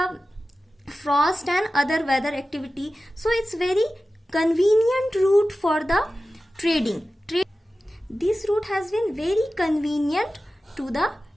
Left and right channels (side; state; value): both; normal; correlation 0.95